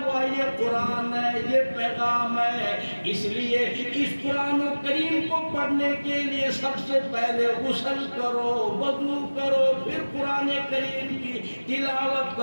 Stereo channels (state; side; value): inverted; both; correlation -1.00